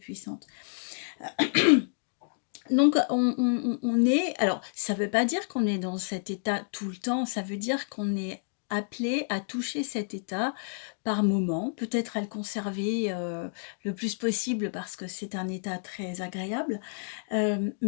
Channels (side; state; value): right; silent; digital silence